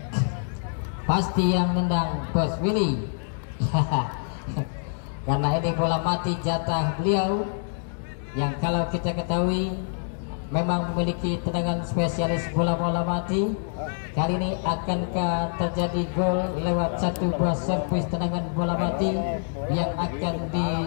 Pasti yang nendang Bos Willy. Karena ini bola mati jatah beliau yang kalau kita ketahui memang memiliki tendangan spesialis bola-bola mati. Kali ini akankah terjadi gol lewat satu buah servis tendangan bola mati yang akan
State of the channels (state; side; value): silent; right; digital silence